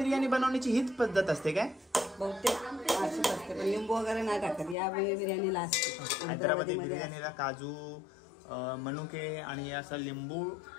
बनवण्याची हीच पद्धत असते काय. बहुतेक अशीच असते पण लिंबू वगैरे नाही टाकत. या बिर्याणीला असते. हैदराबादी बिर्याणीला काजू मनुके आणि असं लिंबू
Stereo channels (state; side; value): drops out; right; at 4.8 s